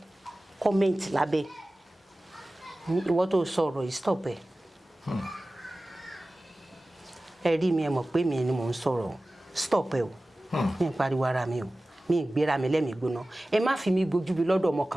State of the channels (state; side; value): normal; both; correlation 0.97